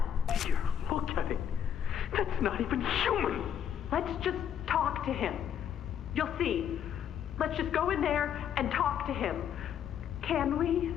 Here, look at it. That's not even human. Let's just talk to him. You'll see. Let's just go in there and talk to him. Can we?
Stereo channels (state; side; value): quieter; right; 9.1 dB